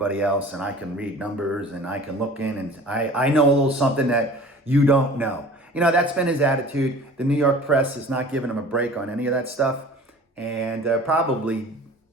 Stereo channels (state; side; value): normal; both; correlation 0.44